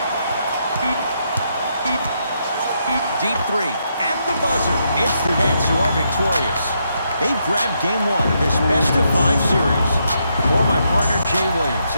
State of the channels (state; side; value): inverted; both; correlation -0.79